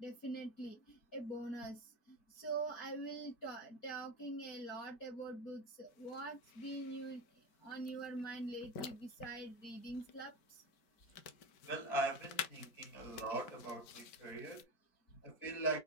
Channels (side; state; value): right; late; 4.5 ms